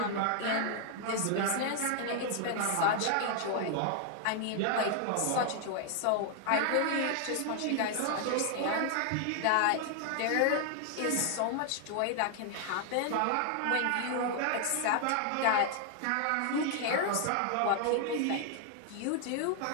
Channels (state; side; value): different; both; correlation 0.00